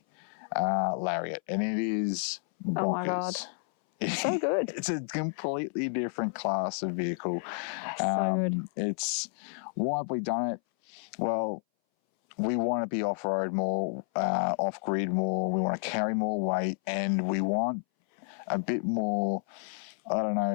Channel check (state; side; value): silent; right; 58 dB below the other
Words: Lariat, and it is bonkers. Oh my God. So good. It's a completely different class of vehicle. So good. It's, why have we done it? Well, we want to be off-road more, off-grid more, we want to carry more weight, and we want a bit more, I don't